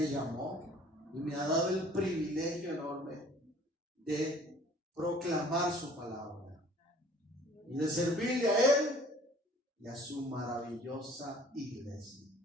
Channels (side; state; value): both; normal; correlation 0.52